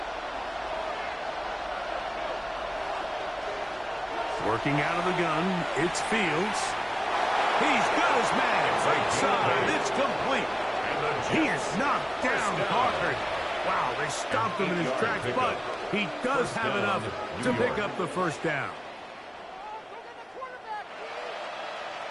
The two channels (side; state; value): both; identical; correlation 1.00